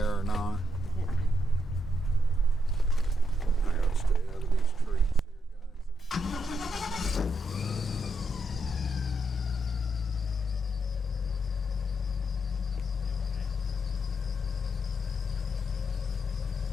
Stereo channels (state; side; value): normal; both; correlation 0.79